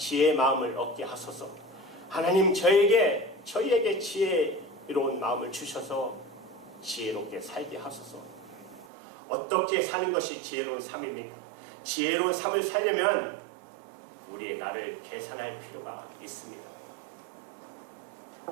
마음을 얻게 하소서. 하나님 저희에게 지혜로운 마음을 주셔서 지혜롭게 살게 하소서. 어떻게 사는 것이 지혜로운 삶입니까? 지혜로운 삶을 살려면 우리의 나를 계산할 필요가 있습니다.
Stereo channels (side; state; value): left; drops out; at 8.8 s